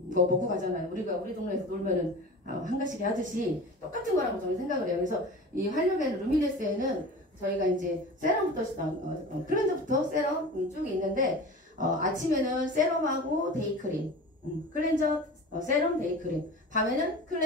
먹고 가잖아요. 우리 동네에서 놀면은 한가시게 하듯이 똑같은 거라고 저는 생각을 해요. 그래서 이 활력에는 루미네스에는 저희가 이제 세럼부터 클렌저부터 세럼 쭉 있는데 아침에는 세럼하고 데이크림 클렌저 세럼 데이크림 밤에는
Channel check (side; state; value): both; normal; correlation 0.35